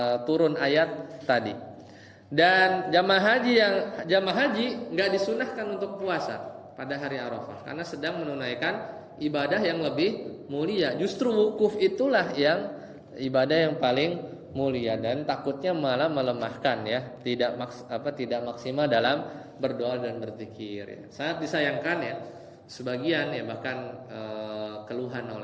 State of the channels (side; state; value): both; identical; correlation 1.00